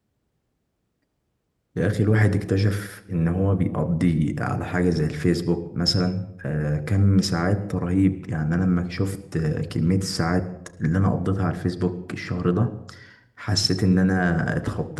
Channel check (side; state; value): both; identical; correlation 1.00